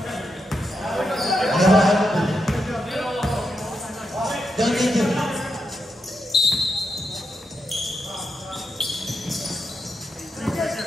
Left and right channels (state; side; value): normal; both; correlation 0.84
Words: Don't need to.